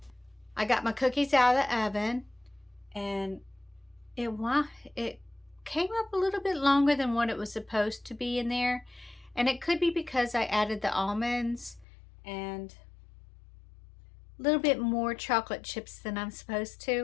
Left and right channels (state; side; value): drops out; right; at 11.9 s